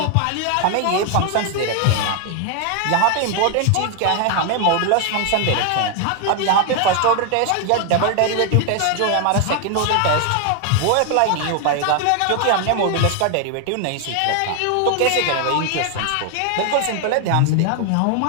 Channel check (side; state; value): both; different; correlation 0.00